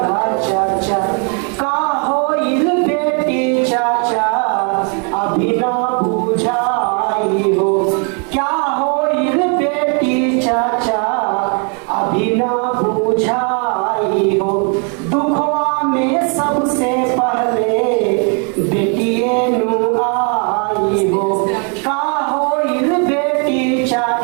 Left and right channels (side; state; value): left; quieter; 38.3 dB